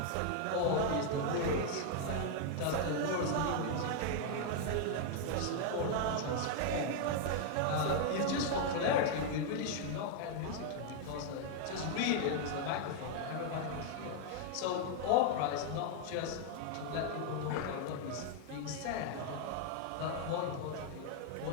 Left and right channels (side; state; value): both; different; correlation 0.00